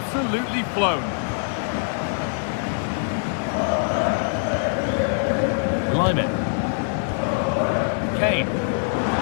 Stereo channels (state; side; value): silent; right; digital silence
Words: flown. Lyman. Kane.